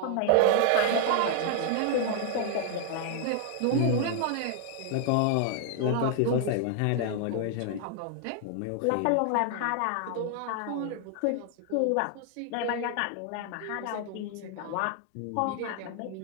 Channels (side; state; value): both; different; correlation 0.00